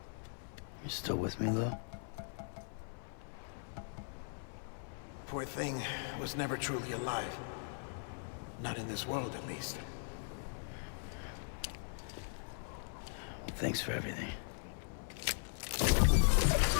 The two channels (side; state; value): right; silent; 52 dB below the other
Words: You still with me, though? Poor thing was never truly alive. Not in this world, at least. Thanks for everything.